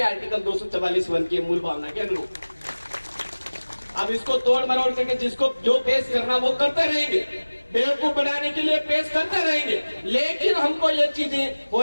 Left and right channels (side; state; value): both; inverted; correlation -1.00